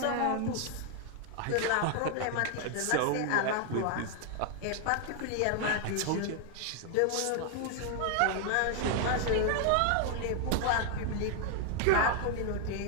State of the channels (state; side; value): different; both; correlation 0.00